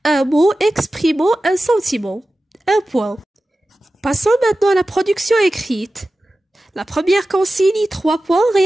un mot exprimant un sentiment. 1 point. Passons maintenant à la production écrite. La première consigne, 3 points,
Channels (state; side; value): normal; both; correlation 0.95